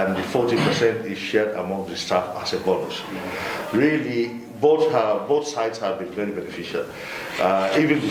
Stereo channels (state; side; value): identical; both; correlation 1.00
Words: the 40% is shared among the staff as a bonus. Really, both sides have been very beneficial. Even the